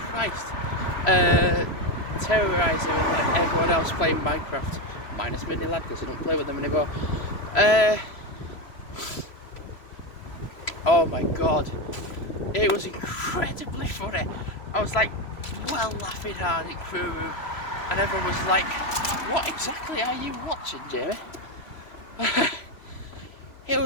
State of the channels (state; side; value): late; right; 3.0 ms